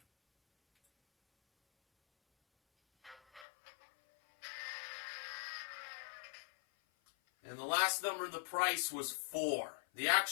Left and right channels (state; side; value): drops out; right; at 3.5 s